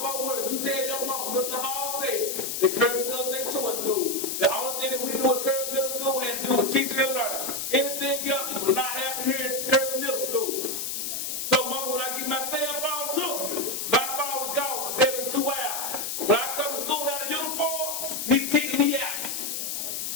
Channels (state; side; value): noise; left; hiss, 3 dB below the sound